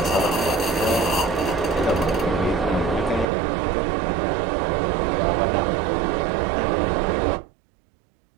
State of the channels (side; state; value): left; drops out; at 3.2 s